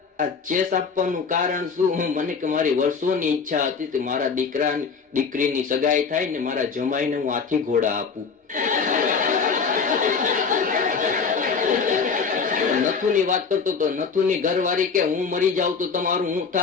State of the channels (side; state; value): right; quieter; 5.4 dB